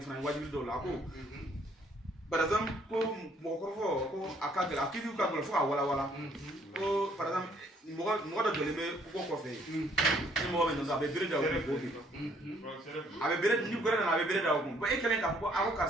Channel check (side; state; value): both; normal; correlation 0.65